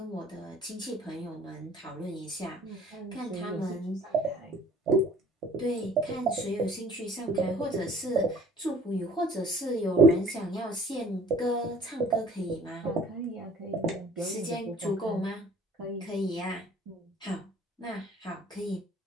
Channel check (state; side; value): normal; both; correlation 0.52